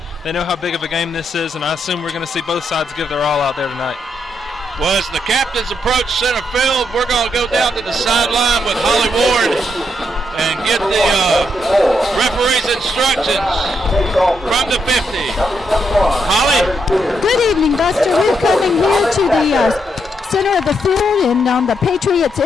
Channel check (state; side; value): normal; both; correlation 0.79